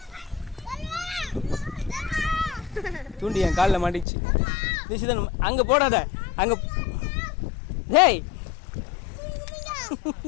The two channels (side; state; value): right; drops out; at 4.0 s